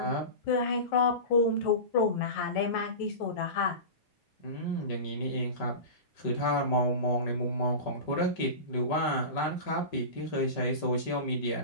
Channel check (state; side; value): late; right; 5.2 ms